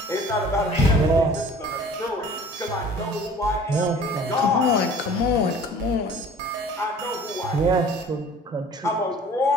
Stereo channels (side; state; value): both; normal; correlation 0.48